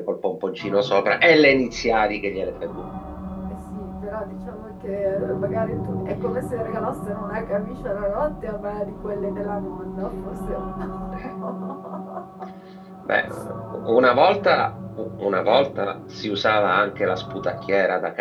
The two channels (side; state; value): both; identical; correlation 1.00